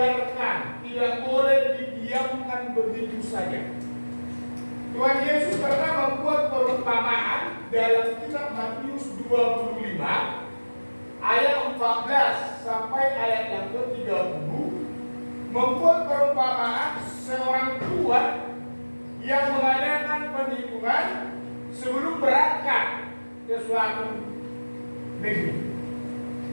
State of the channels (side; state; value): both; inverted; correlation -1.00